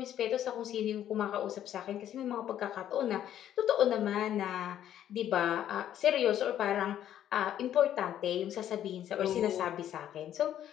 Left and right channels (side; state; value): right; quieter; 11.0 dB